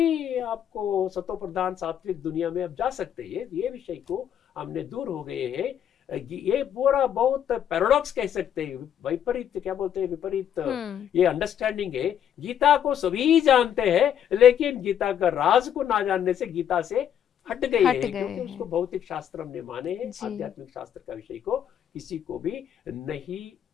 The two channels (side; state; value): right; quieter; 9.5 dB